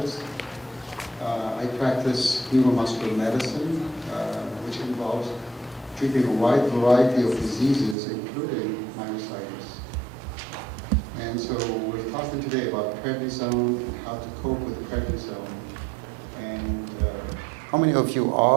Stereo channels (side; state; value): left; drops out; at 8.0 s